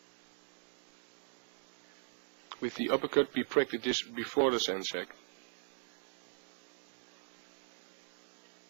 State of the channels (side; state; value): left; silent; digital silence